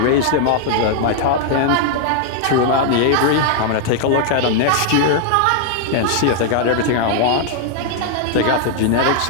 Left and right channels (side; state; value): both; different; correlation 0.00